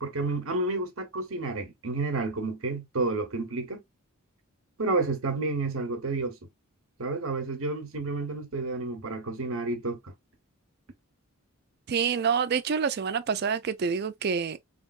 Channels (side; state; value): left; quieter; 3.9 dB